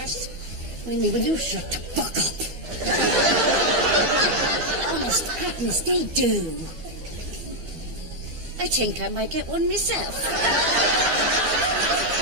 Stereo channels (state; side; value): late; left; 12 ms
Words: Winnie, will you shut the fuck up? Honest, Agnes, they do. I think I might get one myself.